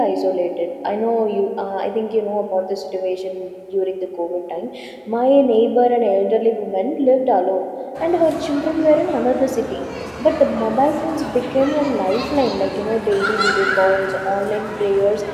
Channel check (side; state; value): both; identical; correlation 1.00